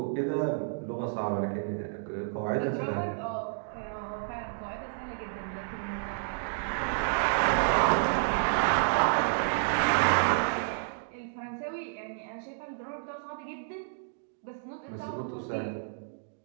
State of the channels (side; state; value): left; silent; digital silence